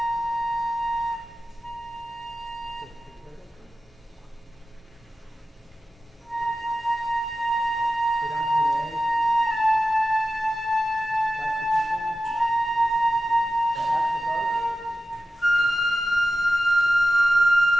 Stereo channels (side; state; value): both; normal; correlation 0.94